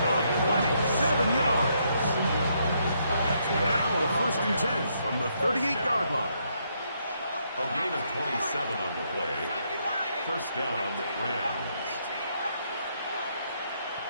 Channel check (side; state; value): both; inverted; correlation -0.75